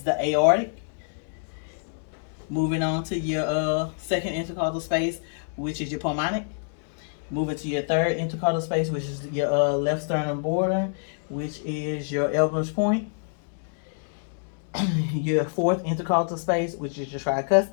the aortic. Moving on to your second intercostal space, which is your pulmonic. Moving to your third intercostal space, which is your left sternum border, which is your Elbow's point. Your fourth intercostal space, which is your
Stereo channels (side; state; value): right; silent; digital silence